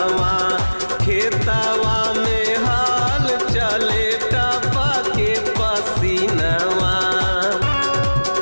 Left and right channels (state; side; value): inverted; both; correlation -1.00